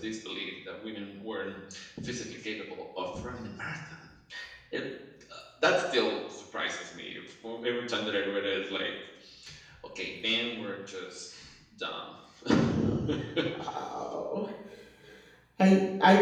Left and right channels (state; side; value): identical; both; correlation 1.00